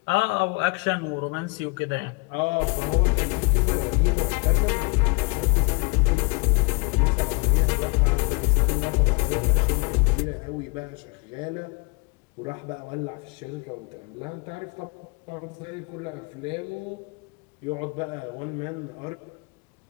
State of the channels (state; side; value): quieter; right; 30.4 dB